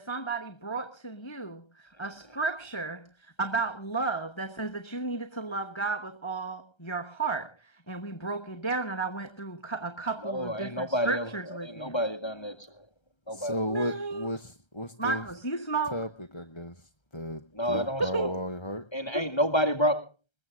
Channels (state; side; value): late; right; 1.3 ms